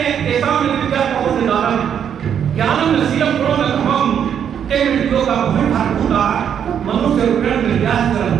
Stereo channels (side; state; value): left; quieter; 8.5 dB